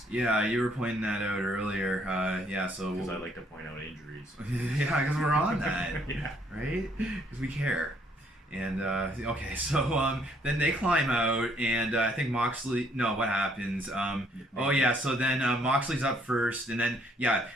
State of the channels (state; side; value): normal; both; correlation 0.66